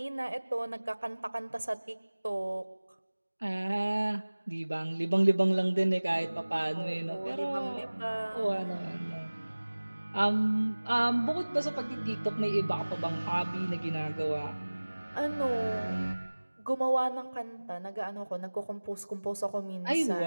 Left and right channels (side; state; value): both; inverted; correlation -1.00